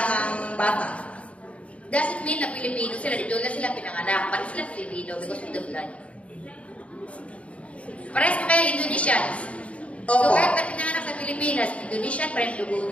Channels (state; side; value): late; right; 0.064 ms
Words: bata. Doesn't mean na Pilipino sila, dito na sila pinanganak, pati sila Pilipino because of the blood. Parehas pa kayo Indonesians. So kahit na pinanganak sa Pilipinas, Indonesian pa rin